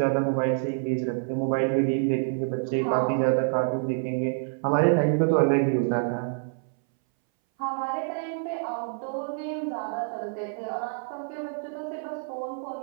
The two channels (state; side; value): silent; left; 60 dB below the other